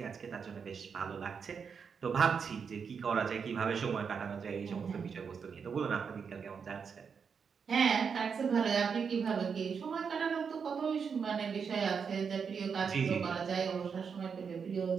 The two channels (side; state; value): left; quieter; 6.2 dB